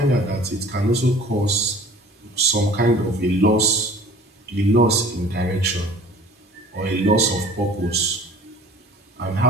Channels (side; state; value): both; normal; correlation 0.47